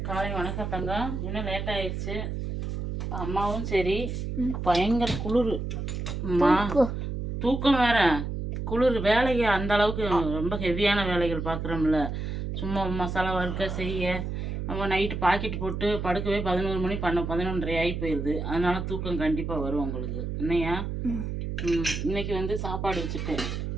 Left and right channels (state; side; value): noise; right; hum, 4 dB below the sound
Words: காலை வணக்கம் தங்கம். இன்னும் லேட் ஆயிடுச்சு. அம்மாவும் சரி பயங்கர குளிர், தூக்கம் வேற, குளிர். வேலைக்கு அந்த அளவுக்கு ரொம்ப ஹெவியான வேலைகள் பார்க்குறோம்ல. சும்மா மசாலா வறுக்க செய்ய நம்ம நைட்டு பாக்கெட் போட்டு படுக்கவே 11 மணி 11:30 ஆகி போயிடுது. அதனால தூக்கம் கண்டிப்பாக வரும் உங்களுக்கு. என்னையா இன்னைக்கு வந்து சாப்பாடு வச்சுட்டேன்.